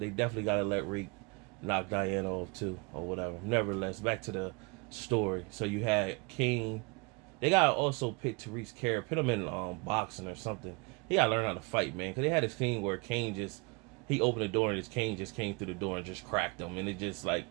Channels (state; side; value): quieter; left; 29.4 dB